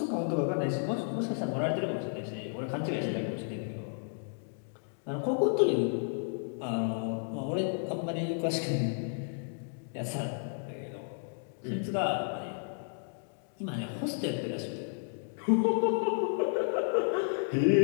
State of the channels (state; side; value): silent; right; digital silence